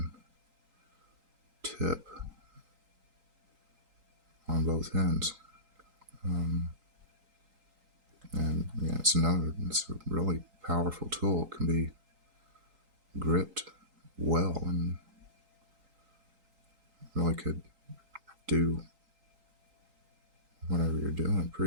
tip on both ends. And yeah, it's a really powerful tool. It can be gripped well and really could do whatever you're doing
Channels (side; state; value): left; late; 3.8 ms